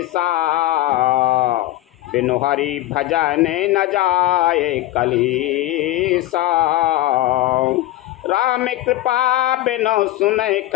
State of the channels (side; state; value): right; quieter; 15.4 dB